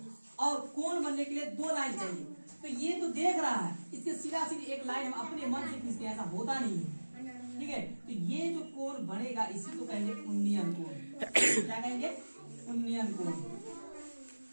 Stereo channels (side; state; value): both; inverted; correlation -1.00